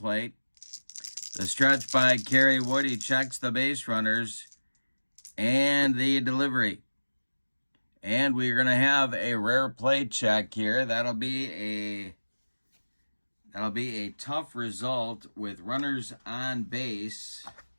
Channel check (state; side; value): inverted; both; correlation -1.00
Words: The stretch by Kerry Wood, he checks the base runners. And the delivery. And we're going to have a rare play check here. That'll be a tough result with runners on base.